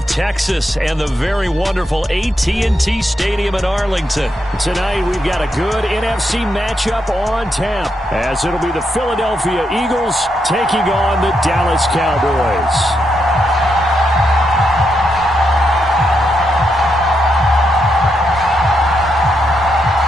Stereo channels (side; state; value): both; normal; correlation 0.81